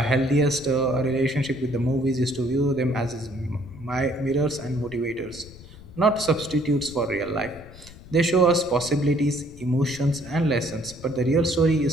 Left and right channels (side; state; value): left; noise; rumble, 18 dB below the sound